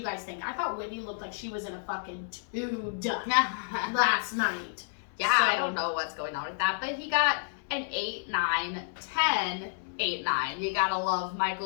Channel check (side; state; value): right; silent; 58 dB below the other